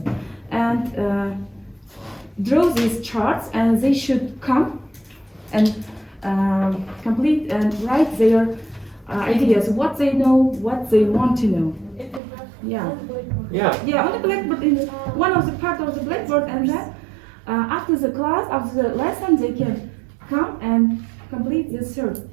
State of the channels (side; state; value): left; drops out; at 12.2 s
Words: and draw these charts, and they should come and complete and write their ideas, what they know, what they want to know. Yeah. Yeah, on the blackboard, in one of the part of the blackboard, and then after the class, after the lesson, they can come and complete this third